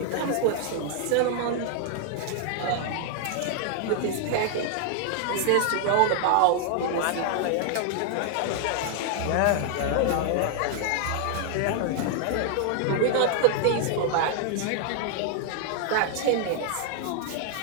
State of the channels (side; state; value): both; different; correlation 0.00